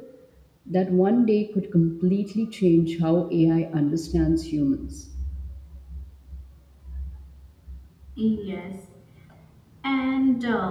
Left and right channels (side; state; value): both; identical; correlation 1.00